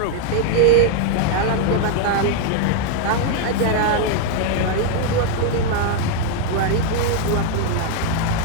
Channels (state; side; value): different; both; correlation 0.00